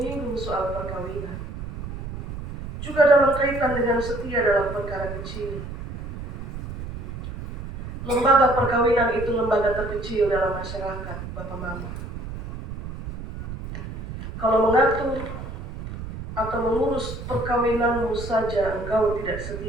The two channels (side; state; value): right; noise; rumble, 9 dB below the sound